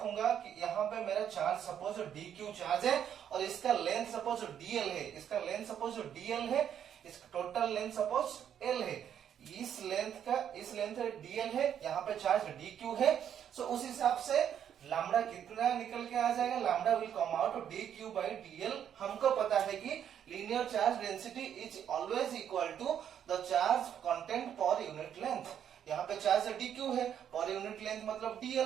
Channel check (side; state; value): left; quieter; 9.2 dB